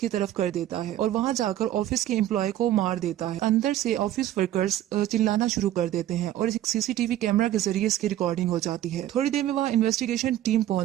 तरफ कर देता है और वहाँ जाकर ऑफिस के एम्प्लॉय को मार देता है। अंदर से ऑफिस वर्कर्स चिल्लाना शुरू कर देते हैं और एक सीसीटीवी कैमरा के जरिए इसकी रिकॉर्डिंग हो जाती है। थोड़ी देर में वहाँ इन्वेस्टिगेशन टीम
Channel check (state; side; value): quieter; left; 12.9 dB